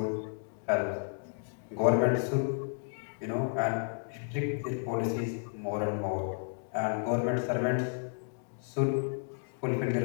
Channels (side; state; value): right; silent; digital silence